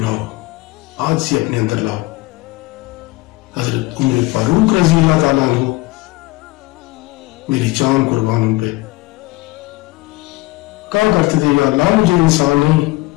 آج ہی اپنے اندر لاؤ. حضرت عمر فاروق رضی اللہ تعالیٰ عنہ، میری جان قربان ان پہ، کہا کرتے تھے یا اللہ مجھے انسان نہیں،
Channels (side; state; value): right; quieter; 21.0 dB